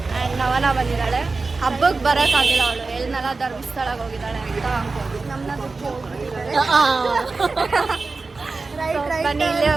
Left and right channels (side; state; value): left; quieter; 3.9 dB